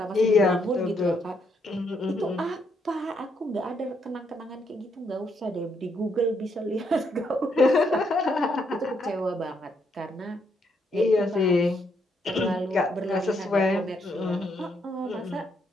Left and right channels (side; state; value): both; normal; correlation 0.75